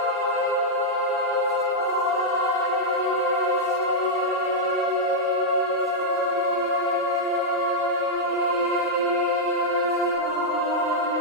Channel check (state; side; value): normal; both; correlation -0.05